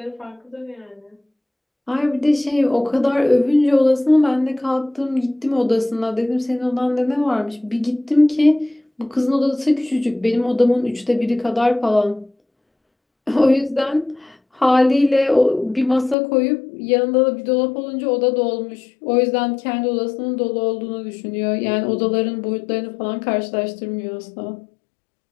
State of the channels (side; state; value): right; drops out; at 16.2 s